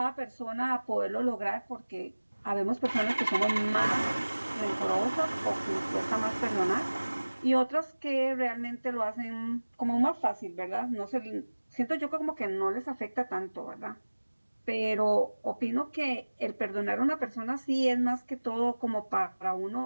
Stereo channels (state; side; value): inverted; both; correlation -1.00